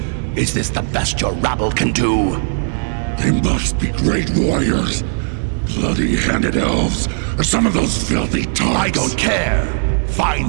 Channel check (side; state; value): left; silent; 64 dB below the other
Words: Is this the best your rabble can do? They must be great warriors. Bloody-handed elves, or some of those filthy tarts. I don't care.